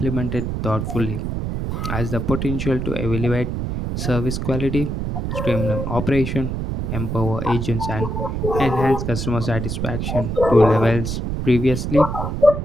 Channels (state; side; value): noise; right; rumble, 3 dB below the sound